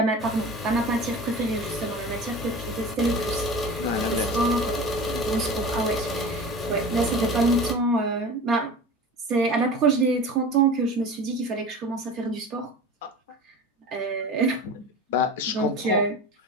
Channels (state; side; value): normal; both; correlation 0.35